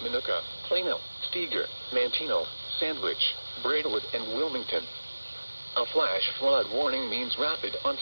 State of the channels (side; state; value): both; inverted; correlation -1.00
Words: Minooka, Plano, Steger, Manteno, Sandwich, Braidwood, and Wilmington. A flash flood warning means rapid